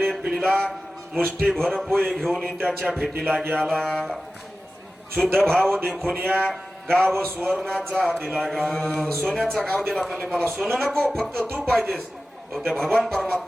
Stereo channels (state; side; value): normal; both; correlation 0.95